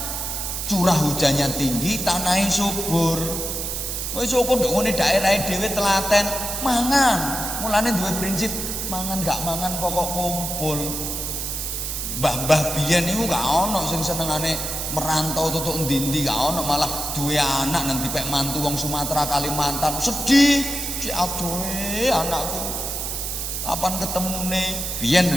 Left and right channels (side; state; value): right; noise; hiss, 4 dB below the sound